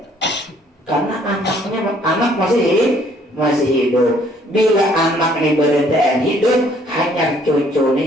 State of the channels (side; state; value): both; normal; correlation 0.62